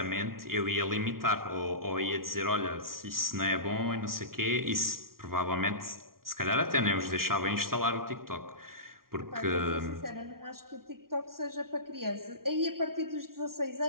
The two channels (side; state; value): left; late; 0.93 ms